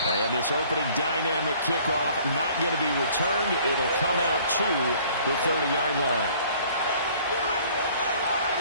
And this opening dynamic kickoff not going to be returned. It'll come out to the 30-yard line.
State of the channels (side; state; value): both; inverted; correlation -0.55